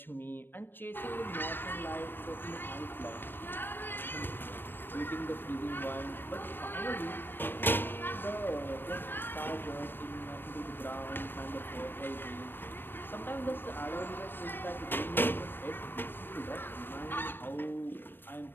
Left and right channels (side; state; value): right; late; 0.096 ms